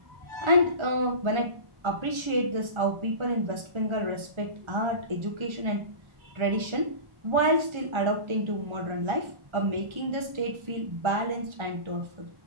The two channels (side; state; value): left; late; 1.3 ms